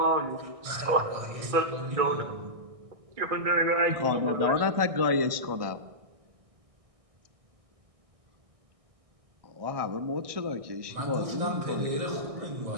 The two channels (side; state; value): left; late; 1.6 ms